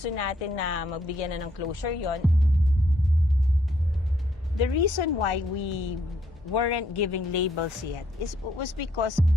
natin na magbigyan na ng closure yon. The reason why we weren't giving labels yet was because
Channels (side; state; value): both; normal; correlation 0.71